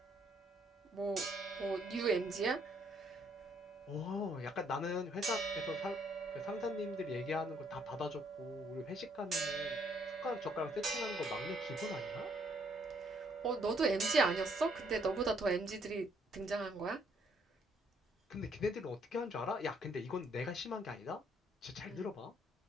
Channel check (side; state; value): both; normal; correlation 0.67